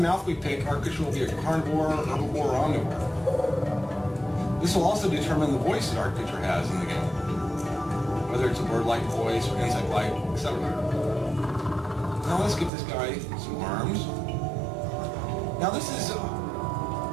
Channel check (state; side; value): drops out; left; at 12.7 s